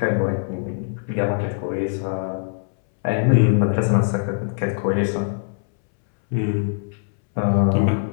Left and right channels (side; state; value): right; silent; 64 dB below the other